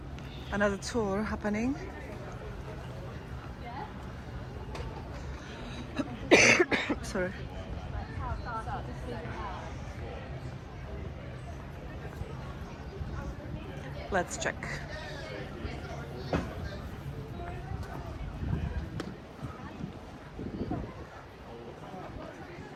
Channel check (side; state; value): both; identical; correlation 1.00